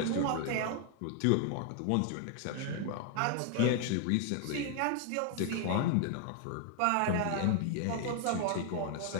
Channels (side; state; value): both; different; correlation 0.00